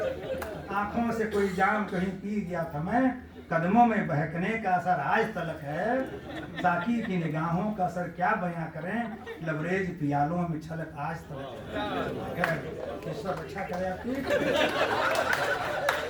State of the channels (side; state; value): both; identical; correlation 1.00